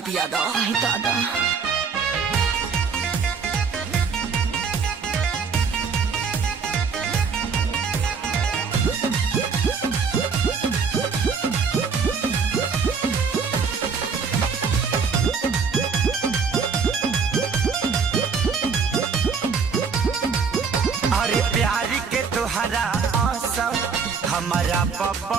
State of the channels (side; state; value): left; quieter; 5.5 dB